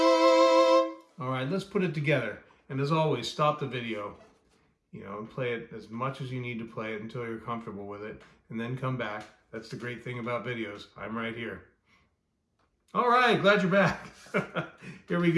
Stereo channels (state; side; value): identical; both; correlation 1.00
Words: All right, let's put it together. And as always, stop the video, you know, and play it as much as you need to play it until you're comfortable with it, and then come back. That's the great thing about videos. I'm right here. All right, glad you're back. Here we